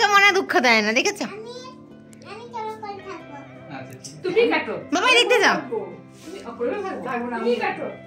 মনে দুঃখ দেয় না, দেখেছো? তুমি কাটো বাবা, দেখতে যাও। তুমি কাটো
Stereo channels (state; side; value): identical; both; correlation 1.00